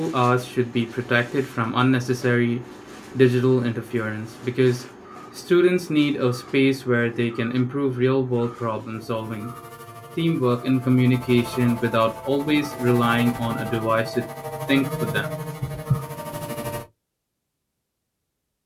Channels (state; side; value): identical; both; correlation 1.00